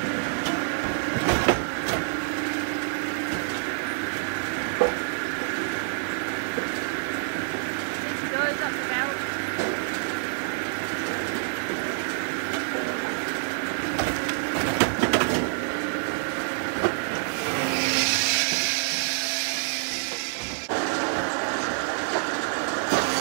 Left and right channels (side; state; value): left; silent; digital silence